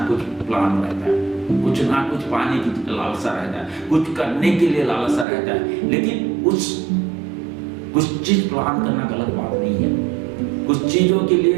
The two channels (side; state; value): left; drops out; at 5.2 s